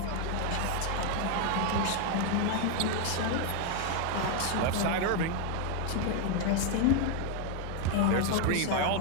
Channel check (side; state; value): both; different; correlation 0.01